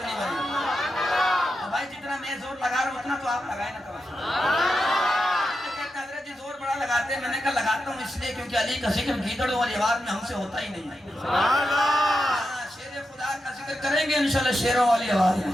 نہیں بنی بھائی، جتنا میں زور لگا رہا ہوں اتنا تو آپ لگائیں نا کبھی۔ کہتے حضرت جی زور بڑا لگاتے ہیں، میں نے کہا لگاتا ہوں اس لیے کیونکہ علی کا ذکر گیدڑوں والی آواز میں ہم سے ہوتا ہی نہیں ہے۔ شیر خدا کا ذکر کریں گے انشاءاللہ شیروں والی آواز میں۔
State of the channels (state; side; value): normal; both; correlation 0.88